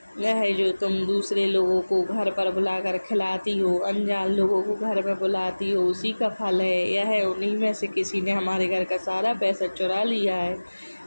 यह जो तुम दूसरे लोगों को घर पर बुलाकर खिलाती हो, अनजान लोगों को घर में बुलाती हो, उसी का फल है। यह उन्हीं में से किसी ने हमारे घर का सारा पैसा चुरा लिया है।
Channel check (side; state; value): both; inverted; correlation -1.00